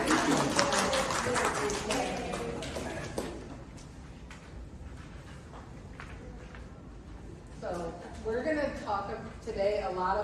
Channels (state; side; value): identical; both; correlation 1.00